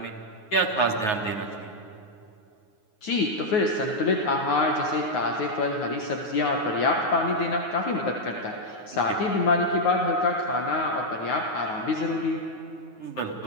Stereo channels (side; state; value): right; late; 9.5 ms